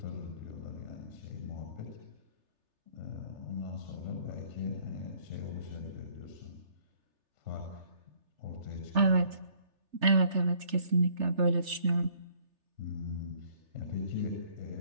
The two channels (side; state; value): left; late; 3.3 ms